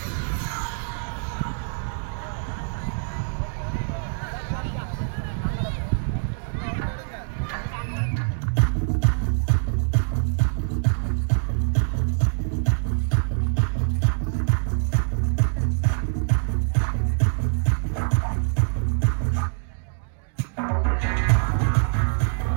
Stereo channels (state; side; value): silent; left; digital silence